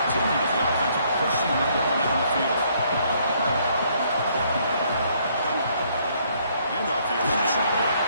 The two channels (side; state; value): both; inverted; correlation -0.67